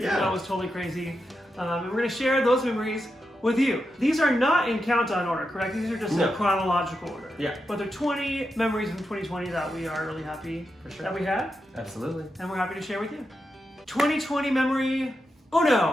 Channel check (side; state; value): both; normal; correlation 0.87